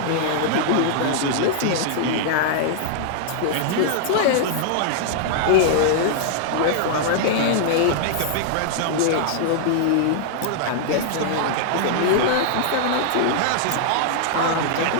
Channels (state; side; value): different; both; correlation -0.01